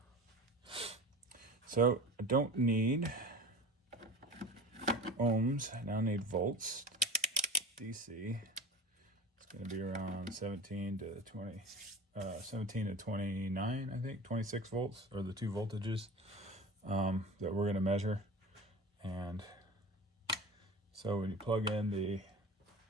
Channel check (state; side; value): normal; both; correlation 0.34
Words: So I don't need ohms, I now need volts, DC. It's going to be around 17 to 29, I think, 26 volts are the 2 voltages that we're going to measure. And so when you plug in, the